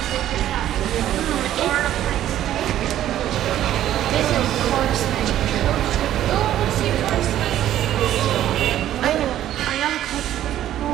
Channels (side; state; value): left; quieter; 12.2 dB